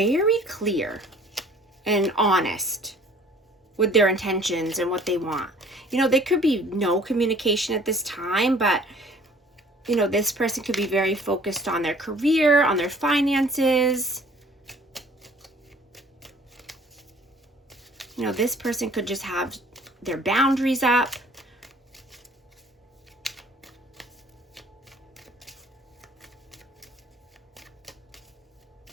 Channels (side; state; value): both; normal; correlation 0.53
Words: clear and honest with their intentions and what they want. You know, there could be no communication at this time, but, you know, this person could be very focused on their career, on their finances. You know, this person could just have their boundaries up.